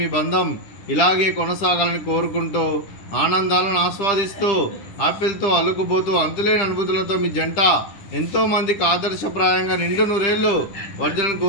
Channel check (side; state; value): right; late; 10 ms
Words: మీ బంధం ఇలాగే కొనసాగాలని కోరుకుంటూ, ఆనందాలను ఆస్వాదిస్తూ ఆపిల్తో అల్లుకుపోతూ అంతులేని అనుభూతులతో మీ జంట ఎంతోమందికి ఆదర్శప్రాయంగా నిండు నూరేళ్ళు వర్ధనని